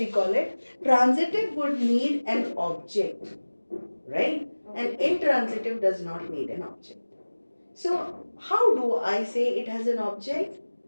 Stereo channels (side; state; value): both; inverted; correlation -1.00